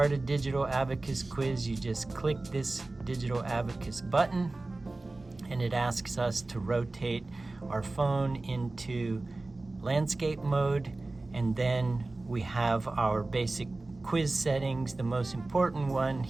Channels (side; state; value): left; quieter; 3.1 dB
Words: a Digital Abacus quiz, you just click this Digital Abacus button, and it asks us to rotate our phone into landscape mode, and then we have our basic quiz settings. The most important one